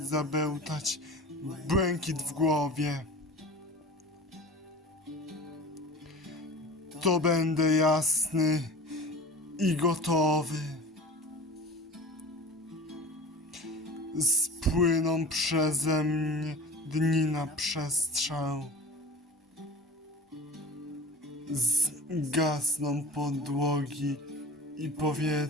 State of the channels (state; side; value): normal; both; correlation 0.36